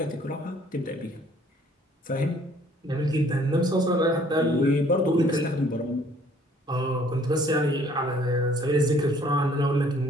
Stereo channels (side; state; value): both; normal; correlation 0.59